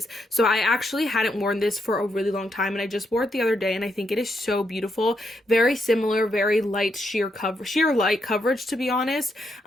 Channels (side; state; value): both; normal; correlation 0.79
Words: So I actually hadn't worn this for a really long time, and I just wore it the other day, and I think it is so beautiful. Very similar, very light sheer light coverage, to be honest.